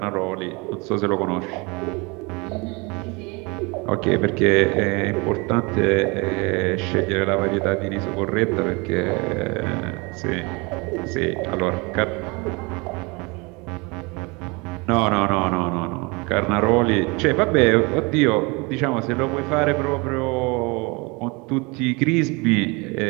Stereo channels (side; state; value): left; quieter; 27.6 dB